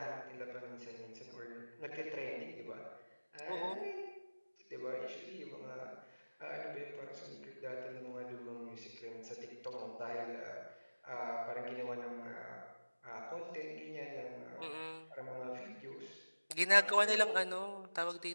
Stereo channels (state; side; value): inverted; both; correlation -1.00